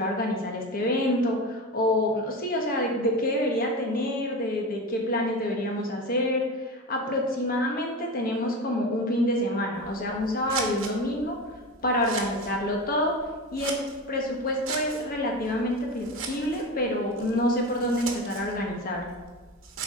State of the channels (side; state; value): both; normal; correlation 0.26